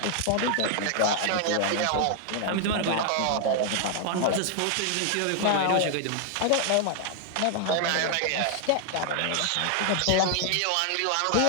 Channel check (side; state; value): both; different; correlation 0.00